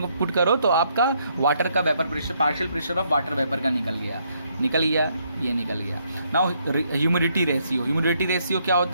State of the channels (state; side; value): inverted; both; correlation -0.72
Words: पुट करो तो आपका वाटर का vapour pressure, partial pressure of water vapour का निकल गया, ये निकल गया। नाउ ह्यूमिडिटी रेशियो क्या